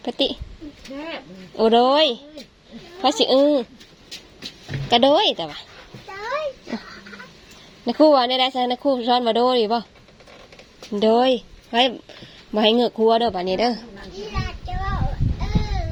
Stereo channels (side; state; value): both; identical; correlation 1.00